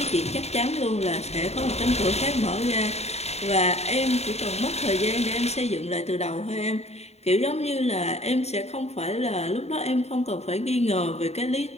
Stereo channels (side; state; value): right; late; 0.31 ms